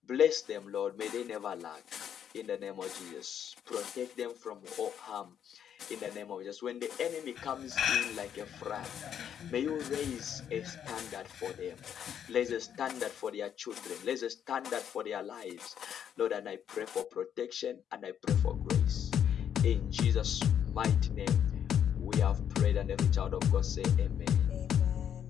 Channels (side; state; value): right; quieter; 9.0 dB